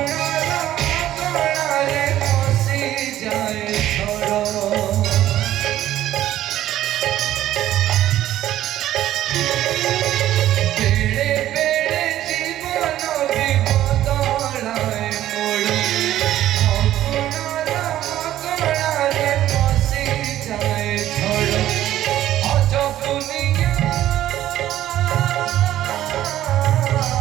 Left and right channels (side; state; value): left; quieter; 13.1 dB